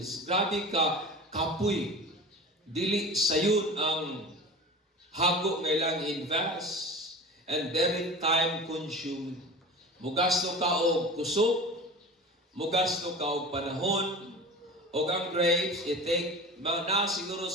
Grabe ka, kapoy. Dili sayun ang hago nga ilang invest and very time consuming. Mugasto ka og kusog, mugasto ka og panahon, o ang grapes, i-take na siguro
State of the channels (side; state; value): both; normal; correlation 0.35